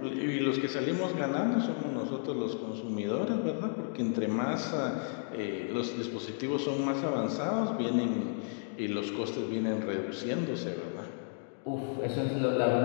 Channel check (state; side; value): silent; right; digital silence